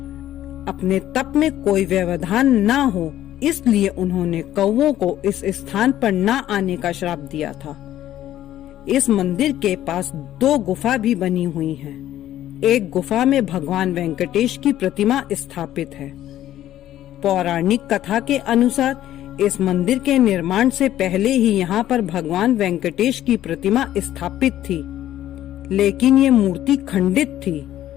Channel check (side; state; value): right; quieter; 12.8 dB